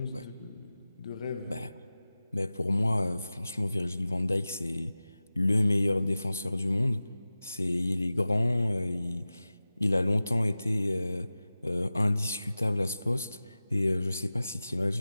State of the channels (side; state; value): both; inverted; correlation -0.96